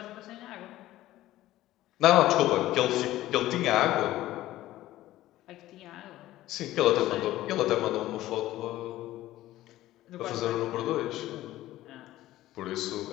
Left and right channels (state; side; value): quieter; right; 15.3 dB